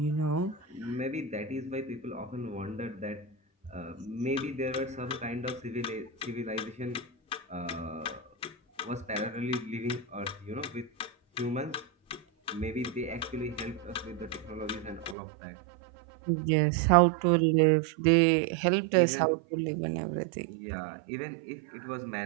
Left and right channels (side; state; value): left; drops out; at 15.2 s